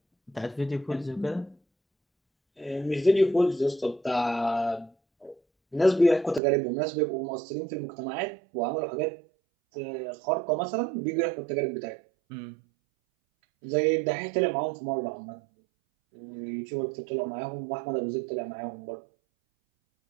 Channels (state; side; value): drops out; left; at 6.4 s